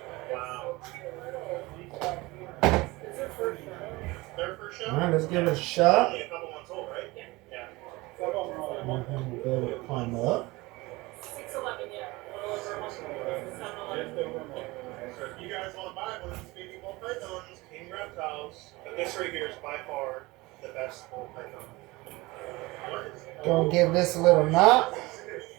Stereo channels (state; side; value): quieter; left; 21.8 dB